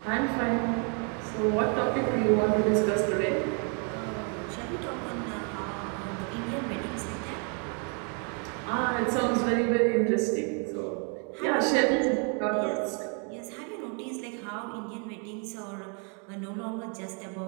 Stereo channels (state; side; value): quieter; left; 38.9 dB